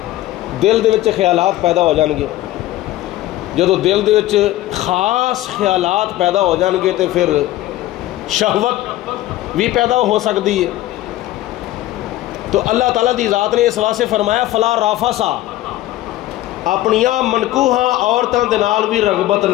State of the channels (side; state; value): right; quieter; 15.4 dB